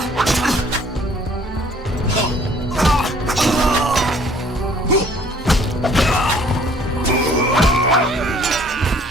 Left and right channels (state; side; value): normal; both; correlation 0.57